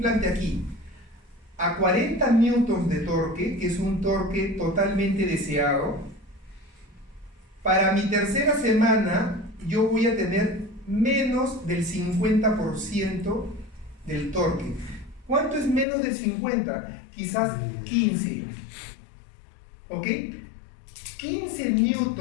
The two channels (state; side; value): drops out; right; at 15.9 s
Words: aquí a 40 newtons de torque, que es un torque totalmente deseado, para mi tercera semana yo voy a tener menos del 50% del torque. ¿Cuánto es menos del 50? Quizás 15. ¿Ok? 15